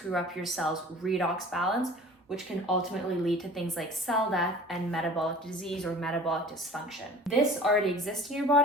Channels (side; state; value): both; normal; correlation 0.43